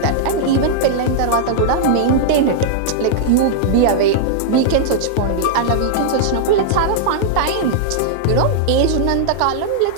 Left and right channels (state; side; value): different; both; correlation -0.02